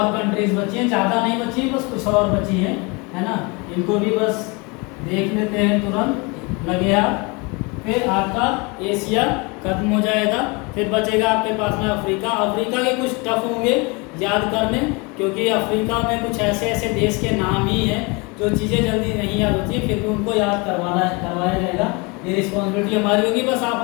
कंट्रीज बची हैं, ज़्यादा नहीं बची, बस कुछ और बची हैं, है ना। इनको भी बस देख लेते हैं, तुरंत लगे आप। फिर आपका एशिया खत्म हो जाएगा, फिर बचेगा आपके पास में अफ्रीका। अफ्रीका के कुछ टफ होंगे याद करने, क्योंकि अफ्रीका में कुछ ऐसे देश के नाम ही हैं जो चीज़ें जल्दी नहीं याद होती, फिर भी उनको याद करवाया जाएगा। ये रिस्पॉन्सिबिलिटी हमारी होगी, बस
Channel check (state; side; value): quieter; right; 28.6 dB